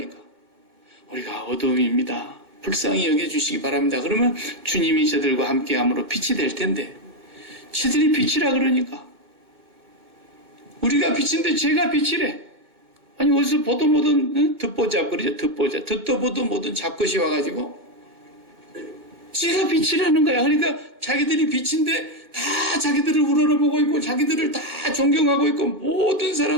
우리가 어둠입니다. 불쌍히 여겨주시기 바랍니다. 그러면 주님이 저들과 함께함으로 빛이 될 텐데 지들이 빛이라 그러니까 우리가 빛인데 제가 빛이래. 아니 어디서 보도 뭐든 듣보 잡거리죠. 듣도 보도 뭐든 잡것이 와가지고 지가 빛이라는 거야. 그러니까 자기들이 빛인데 다 자기들을 우러러보고 있고 자기들을 다 존경하고 있고 모든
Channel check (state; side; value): late; left; 2.1 ms